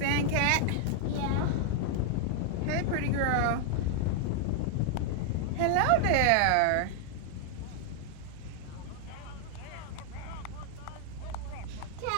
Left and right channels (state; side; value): different; both; correlation 0.00